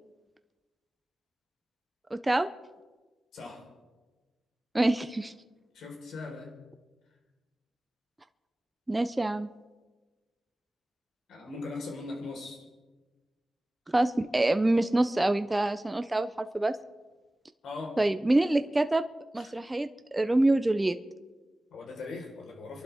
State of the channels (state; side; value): normal; both; correlation 0.98